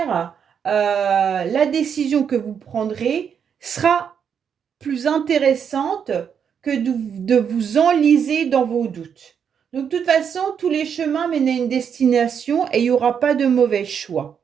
la décision que vous prendrez sera plus intéressante que de vous enliser dans vos doutes. Donc, de toute façon, tous les chemins mènent à une destination et il n'y aura pas de mauvais choix.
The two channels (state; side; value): quieter; left; 7.5 dB